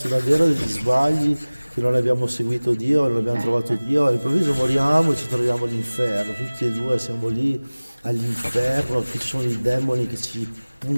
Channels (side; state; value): both; inverted; correlation -1.00